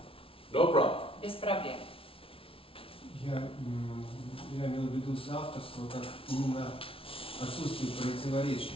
No problem. без проблем. Я имел в виду соавторство как именно отсутствие противоречий,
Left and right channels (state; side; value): late; right; 0.26 ms